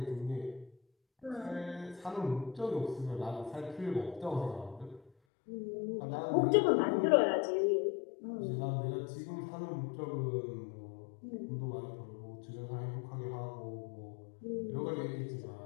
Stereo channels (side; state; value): right; drops out; at 5.1 s